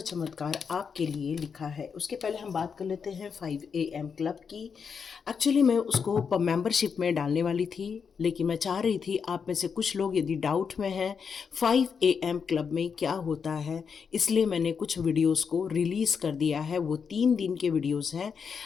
चमत्कार आपके लिए लिखा है। उसके पहले हम बात कर लेते हैं 5 AM क्लब की। एक्चुअली मैं उसको मेंबरशिप में डालने वाली थी, लेकिन मैं चाह रही थी आप में से कुछ लोग यदि डाउट में हैं 5 AM क्लब में क्या होता है, इसलिए मैंने कुछ वीडियोस को रिलीज़ कर दिया है। वो 3 दिन के वीडियोस हैं।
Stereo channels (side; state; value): right; quieter; 6.2 dB